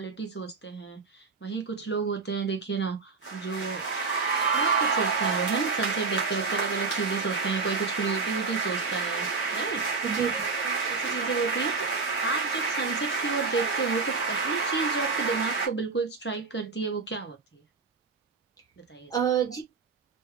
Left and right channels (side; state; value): left; quieter; 4.5 dB